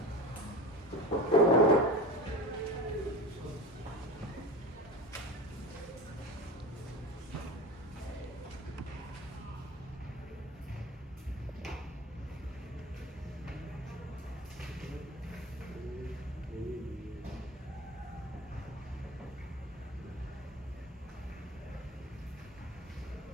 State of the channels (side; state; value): both; normal; correlation 0.31